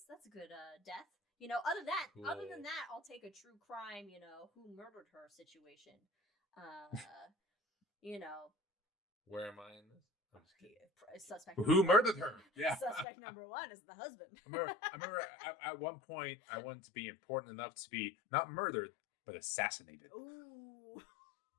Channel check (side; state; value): right; drops out; at 13.1 s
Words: That's a good death. Other Cool. than that, I'll take a true crime, who murdered her situation. Where am I in this? I'm just kidding. Suspect. Who number one. murdered her? Yeah. Suspect number 1 is the husband. I remember at one point I wanted to be important enough to be not murdered but assassinated. Ooh.